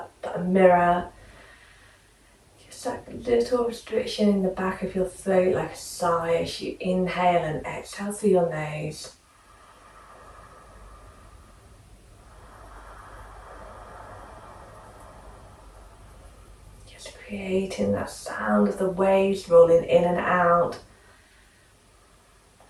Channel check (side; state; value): both; identical; correlation 1.00